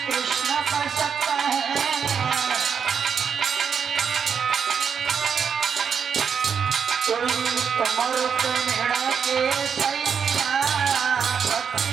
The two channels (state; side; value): quieter; left; 6.9 dB